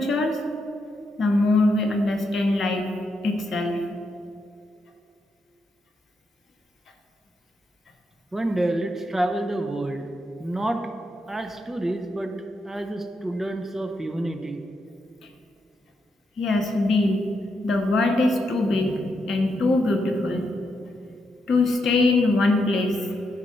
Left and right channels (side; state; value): both; normal; correlation 0.82